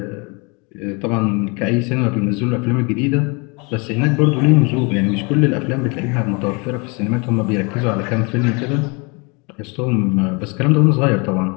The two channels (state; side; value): quieter; right; 30.4 dB